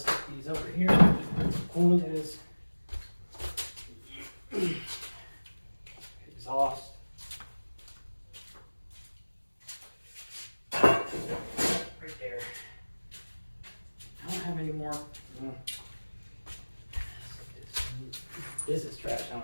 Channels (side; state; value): both; inverted; correlation -1.00